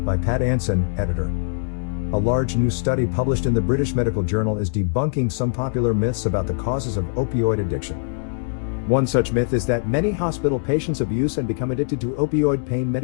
By Pat Anson, editor. A large new study published in the British Medical Journal is debunking some popular myths about the causes of opioid addiction. One such myth is that many hospital patients abuse and become addicted to opioid pain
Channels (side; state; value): right; silent; digital silence